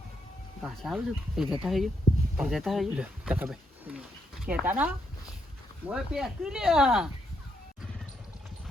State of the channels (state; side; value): normal; both; correlation 0.78